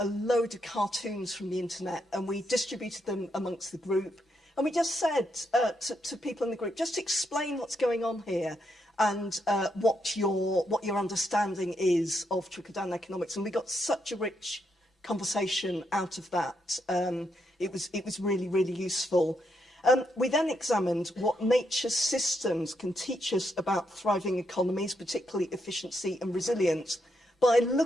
load of cartoons from the internet, and we distributed them amongst the group. And we just said to people in the group, just explain what's going on here and what your understanding is of trickle-down economics. And we got such a rich conversation out of that. It was really, really useful. We then examined what nature's systems can teach us about thriving economies, particularly efficiency and resilience, by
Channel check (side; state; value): both; normal; correlation 0.79